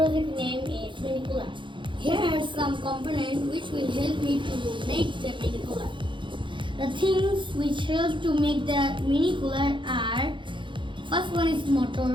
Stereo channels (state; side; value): late; left; 0.23 ms